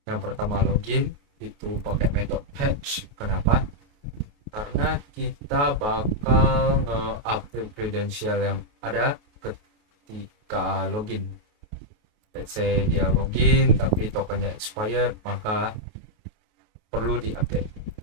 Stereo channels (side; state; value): left; late; 28 ms